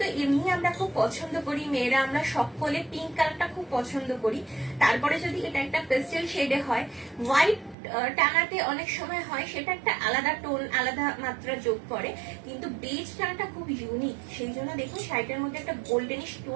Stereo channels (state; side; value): drops out; left; at 7.8 s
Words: তো এমনি আমরা খুব পছন্দ করি, মেয়েরা আমরা সকলে পিঙ্ক কালারটা খুব পছন্দ করি। তারপরে যদি এটা একটা পেস্টেল শেডে হয়, হোয়াইট টানাতে অনেক সময় হয় সেটা একটা আলাদা টোন, আলাদা মাত্রা যোগ করে, কিন্তু বেজ টানাটা খুব ইউনিক। সেই জন্য দেখুন শাড়িটার মধ্যে একটা গোল্ডেনিশ